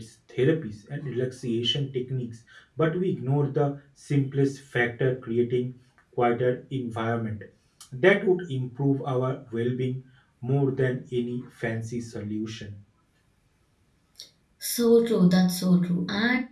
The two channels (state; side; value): identical; both; correlation 1.00